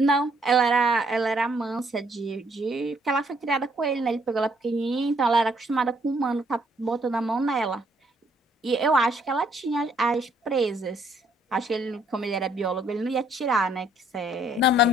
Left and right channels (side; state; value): both; normal; correlation 0.67